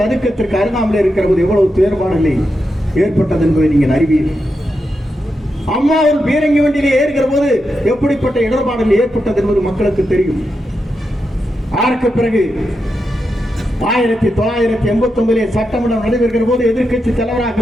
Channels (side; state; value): both; normal; correlation 0.86